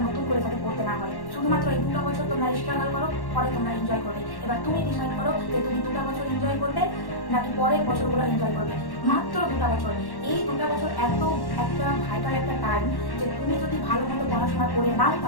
নতুন করে যাতে পড়তে না হয়। শুধুমাত্র এই 2টা বছর তোমরা স্ট্রাগল করো, পরে তোমরা এনজয় করবে। এবার তুমি ডিসাইড করো যে তুমি 2টা বছর এনজয় করবে নাকি পরের বছরগুলো এনজয় করবে। মাত্র 2টা বছর। এই 2টা বছর এত একটা ভাইটাল একটা টাইম যে তুমি যদি ভালো মতো পড়াশোনা করে নাও,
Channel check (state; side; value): late; right; 1.1 ms